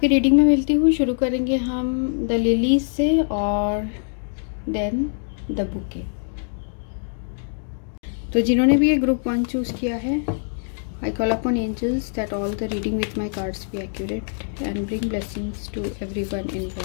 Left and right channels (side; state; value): right; silent; digital silence